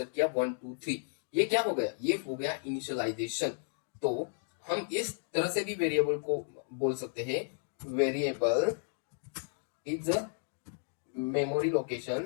किया 1 2 3। ये क्या हो गया? ये हो गया इनिशियलाइजेशन। तो हम इस तरह से भी वेरिएबल को बोल सकते हैं, variable is a memory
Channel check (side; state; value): right; silent; digital silence